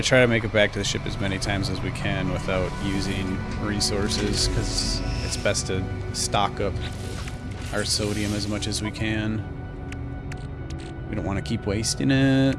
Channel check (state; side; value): identical; both; correlation 1.00